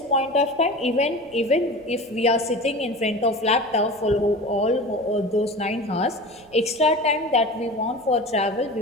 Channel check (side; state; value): right; noise; rumble, 30 dB below the sound